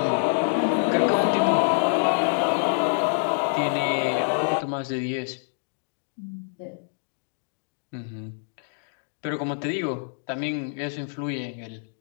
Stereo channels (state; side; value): silent; right; digital silence